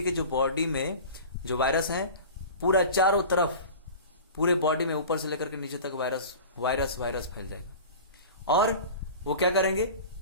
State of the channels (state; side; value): inverted; both; correlation -0.37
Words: के जो बॉडी में जो वायरस है, पूरा चारों तरफ पूरे बॉडी में ऊपर से लेकर के नीचे तक वायरस फैल जाएगा। और वो क्या करेंगे,